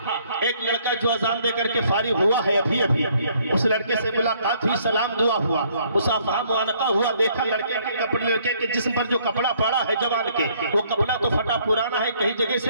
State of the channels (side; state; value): both; inverted; correlation -0.64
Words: ایک لڑکا جو اذان دے کر کے فارغ ہوا ہے ابھی ابھی, اس لڑکے سے ملاقات ہوئی, سلام دعا ہوا, مصافحہ معانقہ ہوا. دیکھا لڑکے کے کپڑے, لڑکے کے جسم پر جو کپڑا پڑا ہے جوان کے, وہ کپڑا تو پھٹا پرانا ہے, کئی جگہ